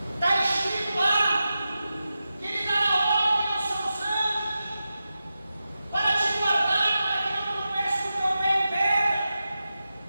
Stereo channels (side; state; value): both; inverted; correlation -0.92